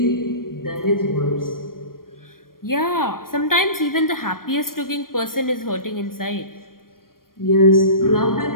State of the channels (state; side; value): late; right; 0.91 ms